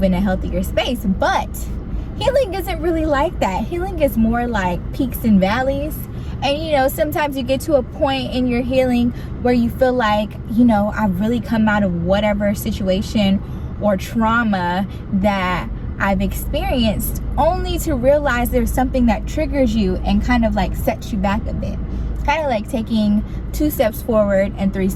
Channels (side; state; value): both; identical; correlation 1.00